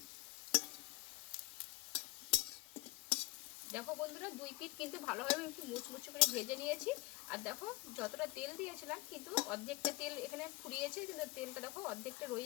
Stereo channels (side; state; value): right; quieter; 21.3 dB